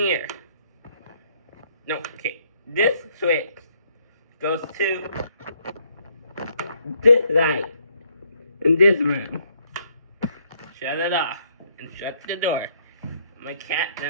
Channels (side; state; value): both; inverted; correlation -0.69